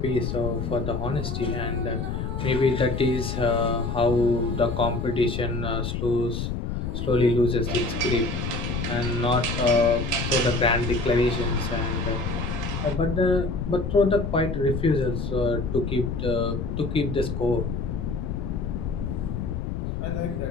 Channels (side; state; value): left; noise; rumble, 3 dB below the sound